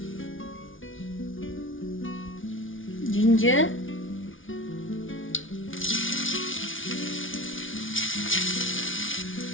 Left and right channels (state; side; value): late; right; 0.57 ms